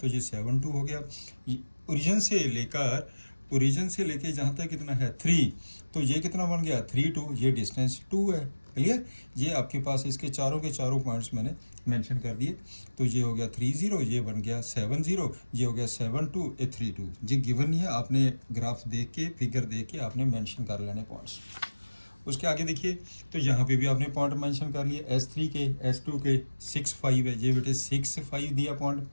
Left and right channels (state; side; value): inverted; both; correlation -1.00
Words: ये 7 2 हो गया। ओरिजिन से लेके जहाँ तक कितना है 3, तो ये कितना बन गया 3 2, ये डिस्टेंस 2 है, क्लियर। ये आपके पास इसके चारों के चारों पॉइंट्स मैंने मेंशन कर दिए, तो ये हो गया 3 0, ये बन गया 7 0, ये हो गया 7 2, ये 3 2। ये गिवन नहीं है, आपने ग्राफ देख के, फिगर देख के आपने मेंशन कर लेने पॉइंट्स। उसके आगे देखिए, तो यहाँ पे भी आपने पॉइंट मेंशन कर लिए, S3 के S2 के 6 5 है, ये बेटे 6 5 दिया पॉइंट,